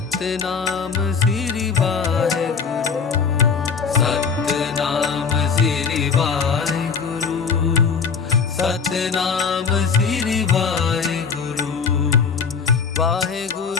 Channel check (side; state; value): right; quieter; 5.8 dB